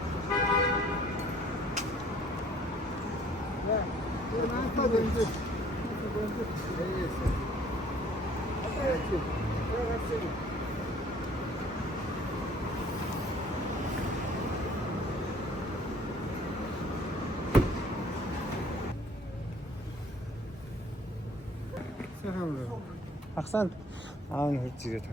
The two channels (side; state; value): both; normal; correlation 0.56